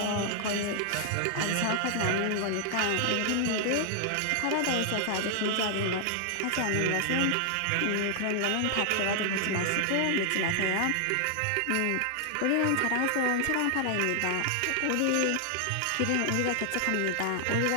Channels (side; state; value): both; different; correlation 0.00